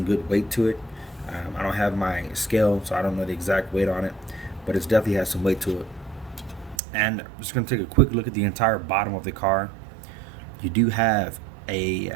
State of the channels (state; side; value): drops out; left; at 6.8 s